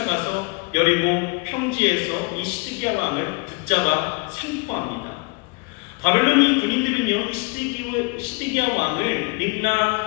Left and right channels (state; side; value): quieter; right; 30.0 dB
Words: 여리고 평지에서 이 시드기야 왕을 붙잡아 생포합니다. 바벨론이 군인들은요, 시드기야 왕을